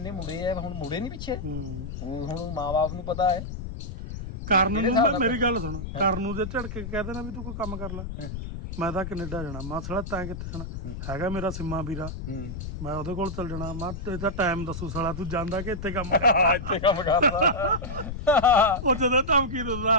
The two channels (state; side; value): noise; left; rumble, 7 dB below the sound